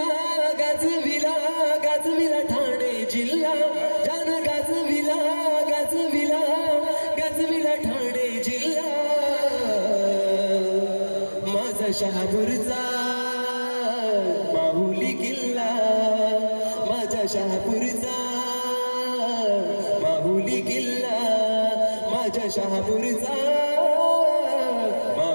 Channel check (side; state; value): both; inverted; correlation -1.00